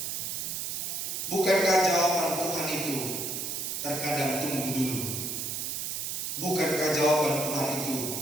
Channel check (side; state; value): right; noise; hiss, 3 dB below the sound